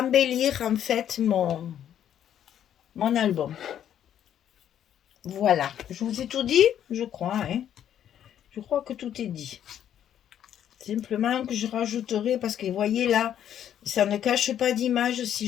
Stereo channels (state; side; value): quieter; right; 10.1 dB